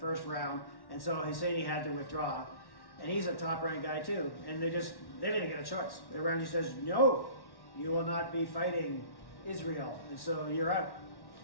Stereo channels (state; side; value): late; right; 1.1 ms